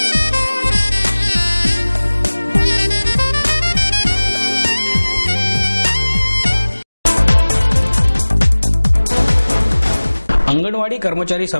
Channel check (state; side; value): inverted; both; correlation -1.00